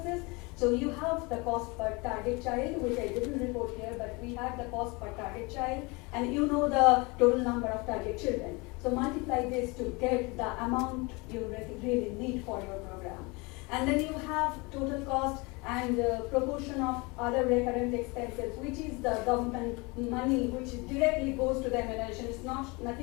So you have the cost per target child, which I didn't report here, but we had the cost per target child, and you know the total number of target children. So multiply this to get the amount you really need for your program. And then you have total cost and proportion of other recurrent expenses, which is the government money which directly goes to the immunization. It's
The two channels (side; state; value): right; quieter; 26.9 dB